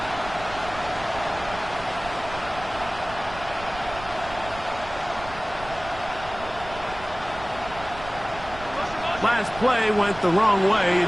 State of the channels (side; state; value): right; noise; rumble, 14 dB below the sound